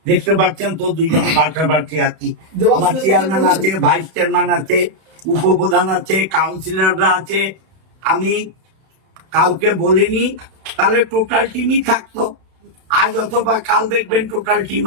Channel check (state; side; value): late; left; 31 ms